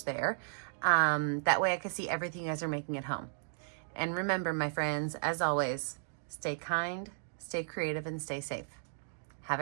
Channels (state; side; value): silent; left; digital silence